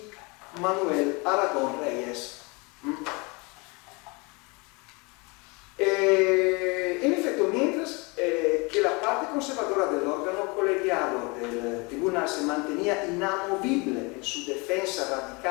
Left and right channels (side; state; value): right; quieter; 28.5 dB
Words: Manuel Aragón Reyes. En efecto, mientras que la parte conservadora del órgano colegiado del tribunal se mantenía inamovible en su defensa